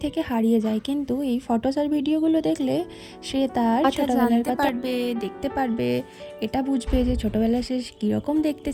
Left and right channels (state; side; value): identical; both; correlation 1.00